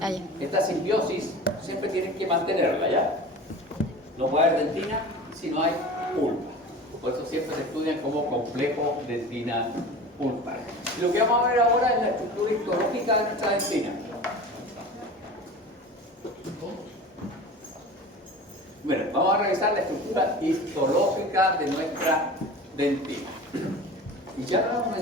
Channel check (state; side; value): normal; both; correlation 0.36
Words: esta simbiosis siempre tienes que mantenerla, ¿ya? No puede haber dentina si no hay pulpa. Por eso siempre se estudian como complejo dentina-pulpa. Y lo que vamos a ver ahora es la estructura histológica de nuestra dentina. Bueno, vamos a revisar la estructura histológica de nuestra dentina. Y ya lo hemos